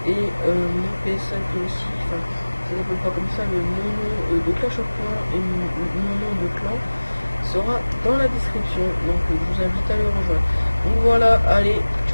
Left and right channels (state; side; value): inverted; both; correlation -1.00